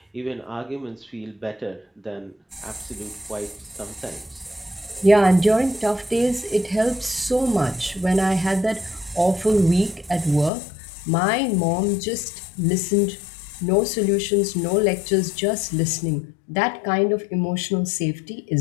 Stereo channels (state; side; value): drops out; right; at 10.5 s